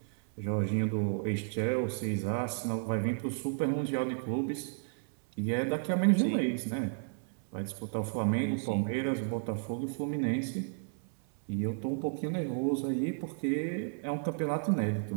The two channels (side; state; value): left; silent; 56 dB below the other